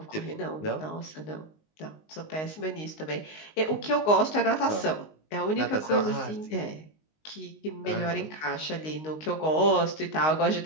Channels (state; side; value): late; right; 19 ms